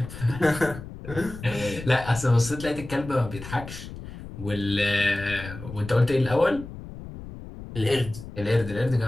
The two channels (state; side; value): noise; left; rumble, 12 dB below the sound